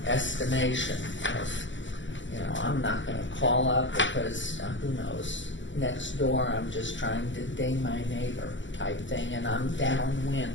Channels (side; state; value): right; late; 0.54 ms